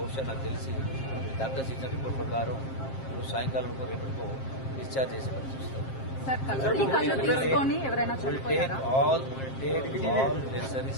నాకు తెలిసి డాక్టర్స్ ఇచ్చిన రిపోర్ట్ ప్రకారం సాయంకాలం రేపటికో డిశ్చార్జ్ చేసే పరిస్థితి వస్తుంది. all necessary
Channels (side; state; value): right; late; 7.5 ms